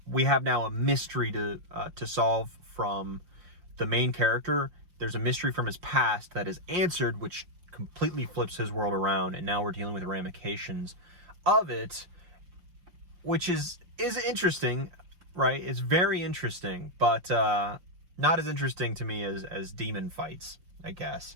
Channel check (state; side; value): late; left; 5.7 ms